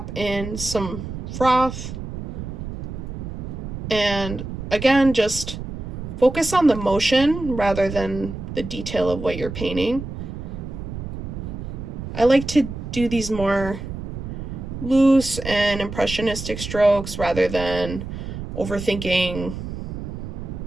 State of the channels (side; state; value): right; noise; rumble, 7 dB below the sound